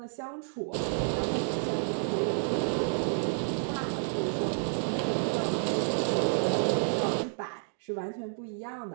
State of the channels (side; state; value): left; silent; 56 dB below the other